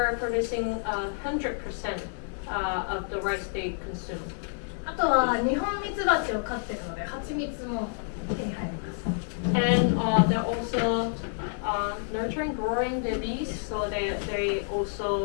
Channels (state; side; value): silent; right; 59 dB below the other